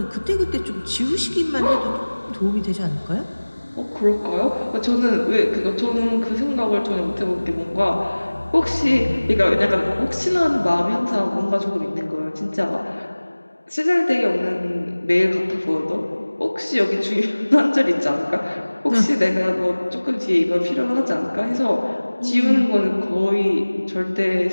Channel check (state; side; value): inverted; both; correlation -1.00